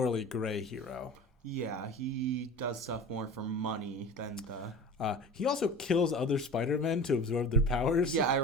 gray hero. Yeah, he does stuff more for money than the... He also kills other Spider-Men to absorb their powers. Yeah, I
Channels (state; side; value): normal; both; correlation 0.35